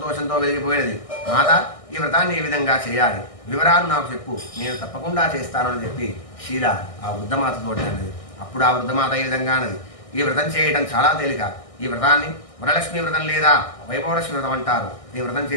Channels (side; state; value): right; late; 1.6 ms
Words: వెలిగిపోయినది. మాత, ఈ వ్రతాన్ని ఏ విధంగా చేయాలి, వివరాలు నాకు చెప్పు, నేను తప్పకుండా చేస్తానని చెప్పి శీల ఆ వృద్ధమాతతో అన్నది. అప్పుడు ఆ వృద్ధమాత ఈ విధంగా అన్నది. ఈ వ్రతం చేయడం చాలా తేలిక. ఈ వ్రతాన్ని వరలక్ష్మి వ్రతం లేదా వైభవలక్ష్మి వ్రతం అంటారు. ఈ వ్రతం